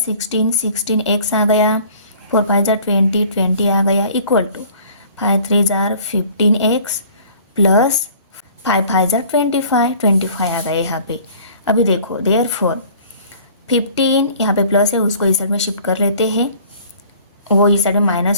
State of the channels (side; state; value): both; inverted; correlation -0.51